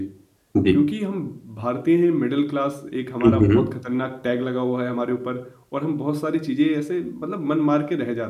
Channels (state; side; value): identical; both; correlation 1.00